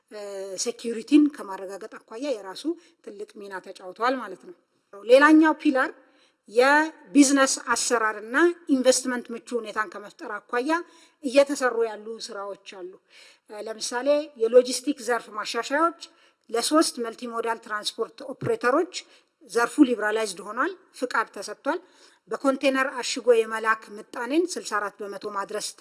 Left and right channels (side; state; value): both; identical; correlation 1.00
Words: ሴኪዩሪቲን ከማረጋገጥ አኳያ የራሱ ትልቅ ሚና ተጫውተዋል ማለት ነው። ሌላኛው ፒላር የቢዝነስ አሰራርና ኢንቨስትመንት ምቹ ሁኔታን ከመፍጠር አኳያ እየተሰሩ ያሉ ስራዎች አሉ። ለምሳሌ የሎጂስቲክ ዘርፍ ማሻሻያዎች ለ3 መልቲሞዳል ትራንስፖርት ኦፕሬተሮች ዘርፉ ሊብራላይዝድ ሆኗል፣ ፍቃድ ተሰጥቷል። በኮንቴነር አሽጎ የመላክ ምጣኔን 64 በመቶ ማድረስ